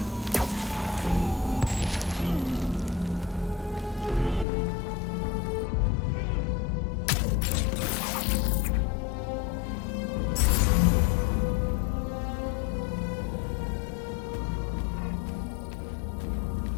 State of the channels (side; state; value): right; drops out; at 4.5 s